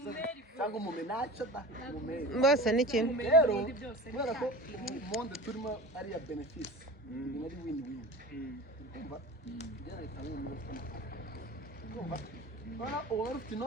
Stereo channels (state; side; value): normal; both; correlation 0.34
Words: cyangwa umumenaca da umumeri bose ni kimwe rero kubera ko monde turimo ari ya benefisi ni ari win-win kumva njyana itanga umuntu ufite amafaranga kumva bana uwo ufite